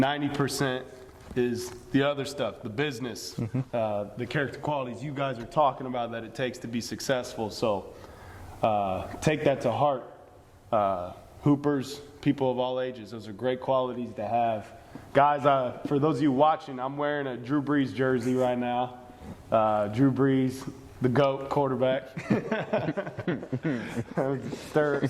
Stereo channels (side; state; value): both; identical; correlation 1.00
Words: is the other stuff, the business, the character qualities you guys are talking about that it takes to be successful. So take that to heart. Hoopers, people of all ages, those are great qualities to have. Guys, for those of you watching, I'm wearing a Drew Brees jersey right now. Drew Brees, the GOAT quarterback.